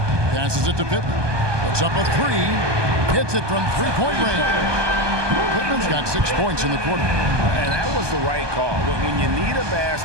Passes it to Pittman. Puts up a 3. Hits it from three-point range. Pittman's got 6 points in the quarter. And that was the right call. When you need a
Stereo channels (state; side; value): late; left; 1.2 ms